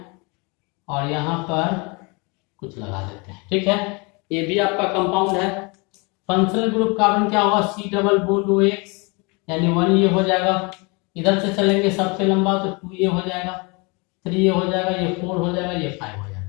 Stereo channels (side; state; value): right; quieter; 29.6 dB